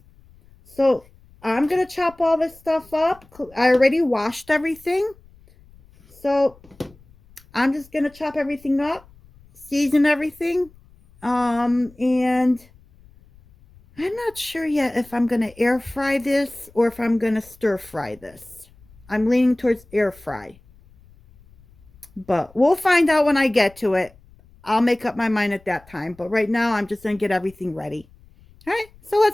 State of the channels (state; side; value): noise; left; rumble, 27 dB below the sound